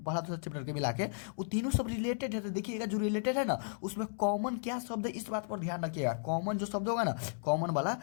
के मिला के, वो तीनों सब रिलेटेड है। तो देखिएगा जो रिलेटेड है ना, उसमें कॉमन क्या शब्द है, इस बात पर ध्यान रखिएगा। कॉमन जो शब्द होगा ना, कॉमन वाला,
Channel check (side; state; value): right; silent; digital silence